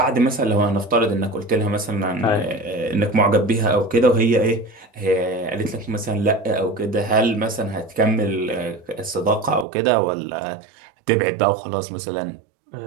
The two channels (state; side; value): drops out; left; at 9.7 s